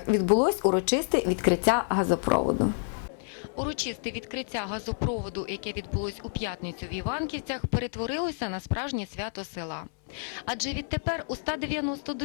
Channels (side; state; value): right; silent; 59 dB below the other